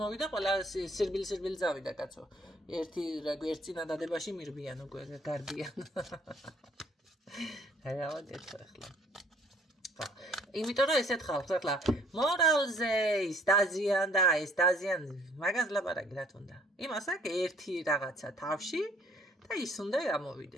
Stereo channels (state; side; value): normal; both; correlation 0.59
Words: მოვიდა ყველა სირბილი წავიდა კაცო ერთი წინადადებაში მირბიან უკვე გარბიან დავადეთ ახლა იმიტომ რომ ესეთ ხალხს ახლა მორალზე ის დაზიან და ეს დაზიან მაგას ლაპარაკი რა თქმა უნდა იმას აქვს ერთი რაღაცა თავში და ის უნდა